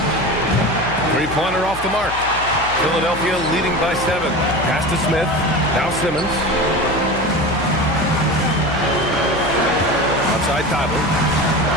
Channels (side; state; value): left; noise; hum, 13 dB below the sound